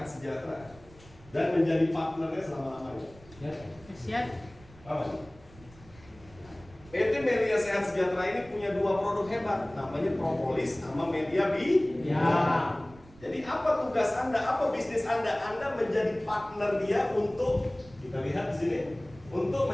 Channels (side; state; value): right; noise; rumble, 23 dB below the sound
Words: Sejahtera dan menjadi partnernya selama-lamanya. Siap. Apa? PT Melia Sehat Sejahtera ini punya 2 produk hebat, namanya propolis sama media Ya. Jadi apa tugas Anda? Apa bisnis Anda? Anda menjadi partner dia untuk, kita lihat di sini, untuk